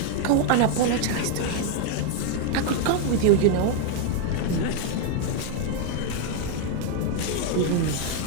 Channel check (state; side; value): different; both; correlation 0.01